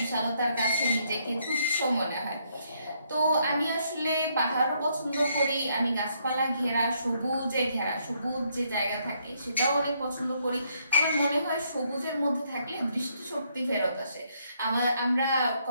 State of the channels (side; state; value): both; inverted; correlation -0.72